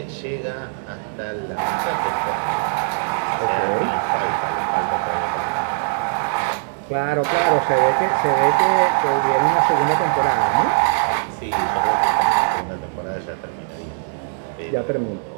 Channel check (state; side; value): silent; left; digital silence